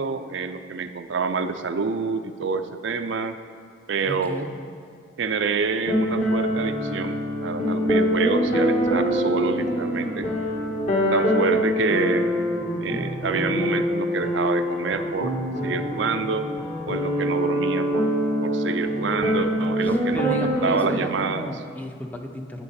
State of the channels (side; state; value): both; normal; correlation 0.42